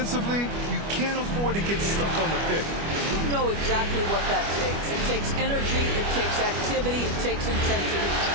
you can't afford to get stuck on the pick. You know exactly what that takes. It takes energy, it takes activity, it takes intensity.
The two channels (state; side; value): late; left; 25 ms